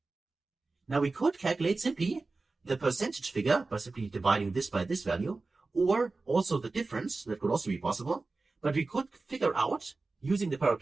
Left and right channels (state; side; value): quieter; left; 3.6 dB